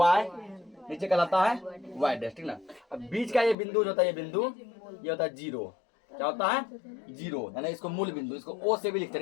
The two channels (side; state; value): right; drops out; at 3.6 s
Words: नीचे कहलाता है वाई डैश, ठीक ना। अब बीच का ये बिंदु जो होता है, ये बिंदु ये होता है जीरो। क्या होता है जीरो, यानी इसको मूल बिंदु, इसको ओ से भी लिखते